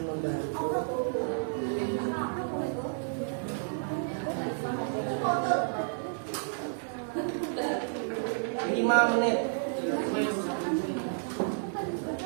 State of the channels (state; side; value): silent; left; digital silence